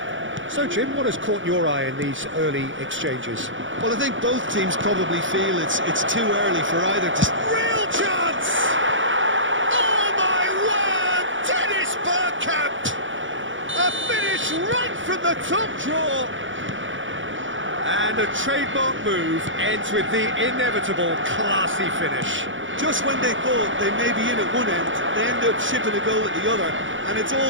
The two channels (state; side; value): late; left; 0.56 ms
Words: So, Jim, what has caught your eye in these early exchanges? Well, I think both teams probably feel it's too early for either to... Real chance! Oh, my word! Dennis Bergkamp! A finish right from the top draw! And a trademark move ends with the inevitable classy finish. Just when they thought they may be in at one end, they end up shipping a goal at the other, and it's